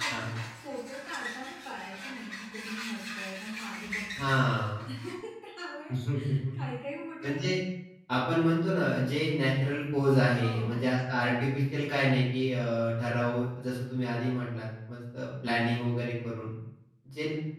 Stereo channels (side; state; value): both; identical; correlation 1.00